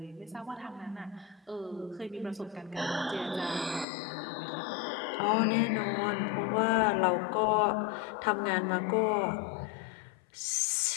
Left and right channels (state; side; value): drops out; right; at 3.9 s